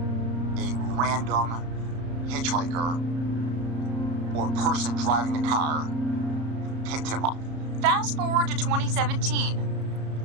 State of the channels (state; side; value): late; left; 34 ms